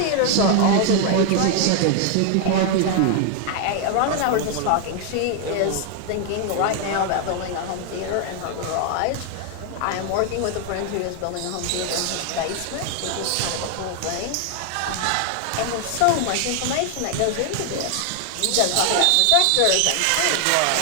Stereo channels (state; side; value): different; both; correlation 0.00